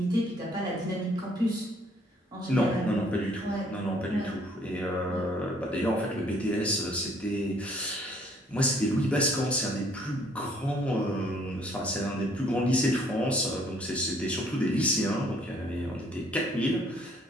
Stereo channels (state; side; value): normal; both; correlation 0.61